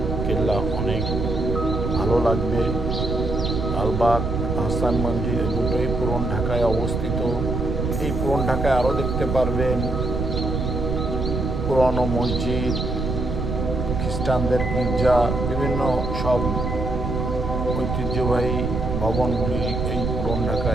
কেল্লা অনেক ভালো লাগবে। লালবাগ, আহসান মঞ্জিল দুটোই পুরন ঢাকায় অবস্থিত। এই পুরন ঢাকায় আরও দেখতে পারবেন পুরনো মসজিদ, খ্রিস্টানদের গির্জা, বিভিন্ন সব ঐতিহ্যবাহী ভবনগুলি এই পুরন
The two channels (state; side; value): noise; right; rumble, 2 dB below the sound